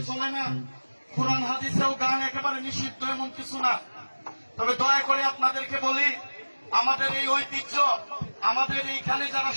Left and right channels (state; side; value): inverted; both; correlation -1.00